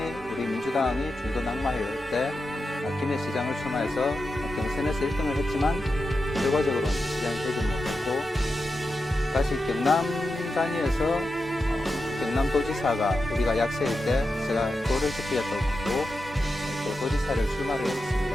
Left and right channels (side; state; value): both; normal; correlation 0.89